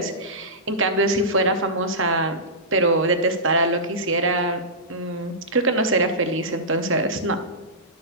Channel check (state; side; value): normal; both; correlation -0.17